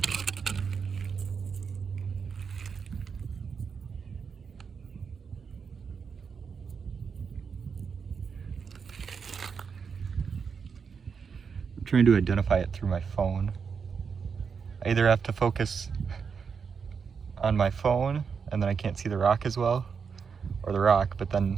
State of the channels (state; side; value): quieter; left; 6.0 dB